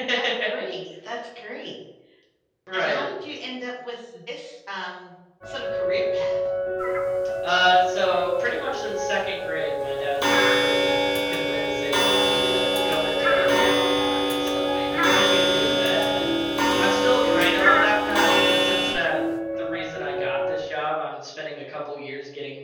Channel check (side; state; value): both; identical; correlation 1.00